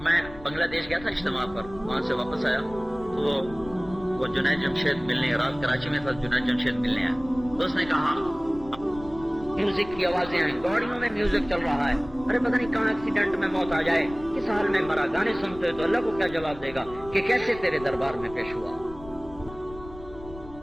میں بنگلہ دیش گیا تھا اجتماع پر، وہاں سے واپس آیا تو وہ جنید جمشید ملنے، رات کراچی میں تھا، جنید جمشید ملنے آیا، تو اس نے کہا میوزک کی آوازیں آئیں، گاڑیوں میں میوزک چل رہا ہے، ارے پتہ نہیں کہاں ایکسیڈنٹ میں موت آ جائے، کس حال میں مرا، گانے سنتے تو اللہ کو کیا جواب دے گا کہ کیسے تیرے دربار میں پیش ہوا۔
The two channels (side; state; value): left; noise; rumble, 17 dB below the sound